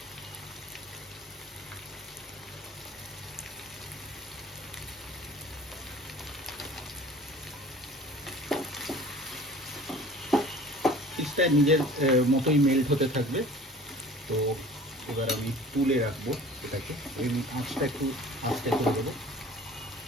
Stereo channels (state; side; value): normal; both; correlation 0.45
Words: চিজটা নিজের মতোই মেল্ট হতে থাকবে। তো এবার আমি তুলে রাখবো এটাকে, এই আঁচটা একটু আস্তে করে দেবো।